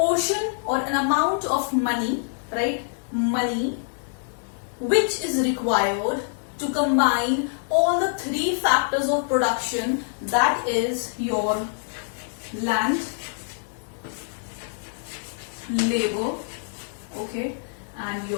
or an amount of money, right? Money which is required to combine all the three factors of production, that is your land, labor, okay, and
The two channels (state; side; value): silent; right; digital silence